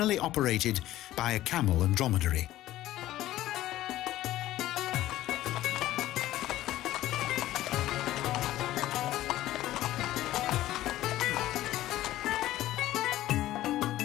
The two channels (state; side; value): quieter; right; 14.8 dB